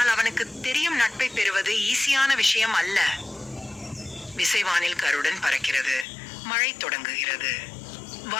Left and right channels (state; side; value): drops out; right; at 6.1 s